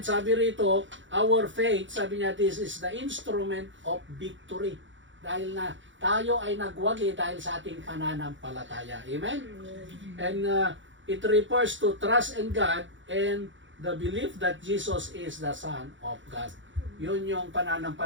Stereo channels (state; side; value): late; left; 0.55 ms